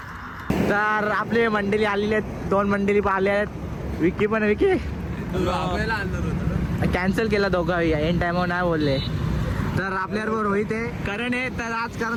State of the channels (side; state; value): both; identical; correlation 1.00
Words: तर आपली मंडळी आलेली आहेत, 2 मंडळी आले आहेत. विकी पण, विकी कॅन्सल केला दोघं, एन टायमावर नाही बोलले. तर आपल्याबरोबर रोहित आहे, करण आहे. तर आज